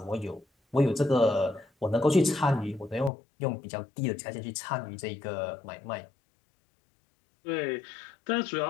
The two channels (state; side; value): drops out; right; at 3.1 s